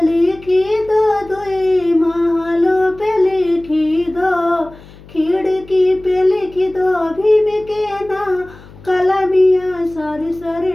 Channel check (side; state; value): left; noise; hum, 21 dB below the sound